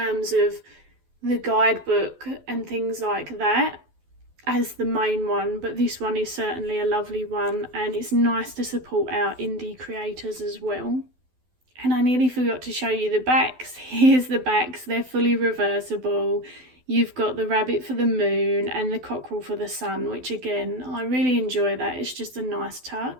of the guidebook and things like that as the main one, but this one is certainly a lovely one, and it's nice to support our indie creators as well. And I nearly forgot to show you the backs. Here's the backs. They're fully reversible. You've got the rabbit for the moon and the cockerel for the sun, which again, I really enjoy that. It's just a nice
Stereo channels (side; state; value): left; late; 12 ms